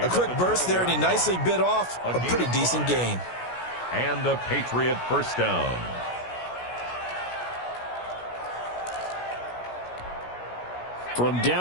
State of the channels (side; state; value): right; late; 17 ms